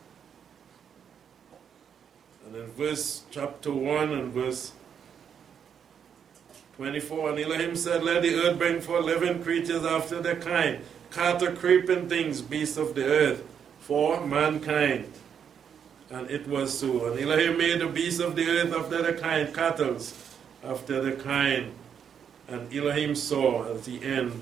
And in verse chapter 1 and verse 24, and Elohim said, let the earth bring forth living creatures after their kind, cattle, creeping things, beasts of the earth, for mankind. And it was so. And Elohim made the beasts of the earth after their kind, cattle after their kind. And Elohim saw at the end,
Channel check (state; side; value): quieter; left; 7.8 dB